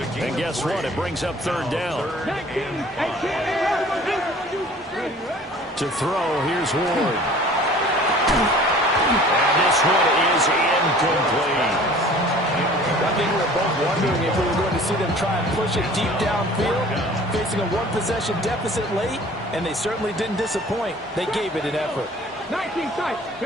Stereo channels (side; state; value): both; normal; correlation 0.48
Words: And guess what? It brings up 3rd down. 19, 18. To throw, here's Ward. And this one is incomplete. I think we were both wondering if we were going to see them try and push it deep downfield, facing a 1-possession deficit late, and they certainly didn't disappoint. They gave it an effort. 19 sight.